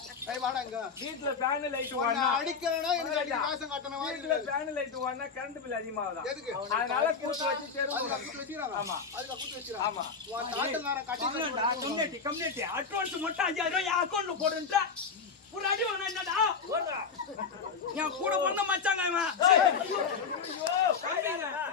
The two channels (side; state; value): right; quieter; 5.5 dB